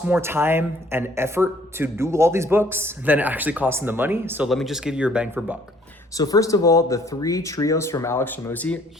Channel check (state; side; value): normal; both; correlation 0.60